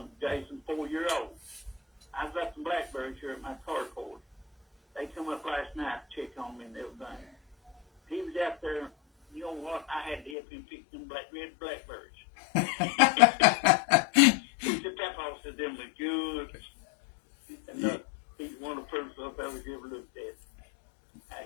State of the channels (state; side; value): drops out; right; at 10.4 s